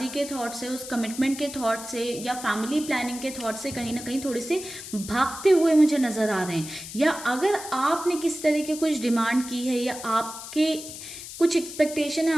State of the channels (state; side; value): noise; left; hiss, 11 dB below the sound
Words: के थॉट से, उस कमिटमेंट के थॉट से या फैमिली प्लानिंग के थॉट से कहीं ना कहीं थोड़े से भागते हुए मुझे नज़र आ रहे हैं। या अगर आपने किस तरह के कुछ डिमांड की है या आपके कुछ एक्सपेक्टेशन है